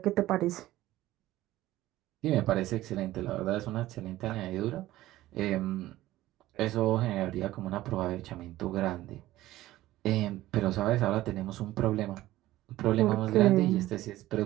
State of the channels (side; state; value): left; quieter; 15.8 dB